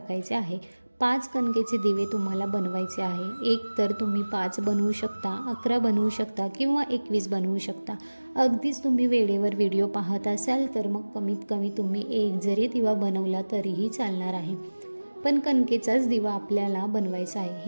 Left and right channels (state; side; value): inverted; both; correlation -1.00